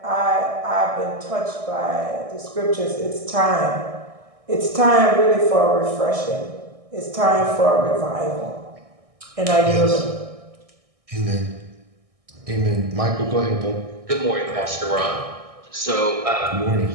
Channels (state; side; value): late; left; 1.6 ms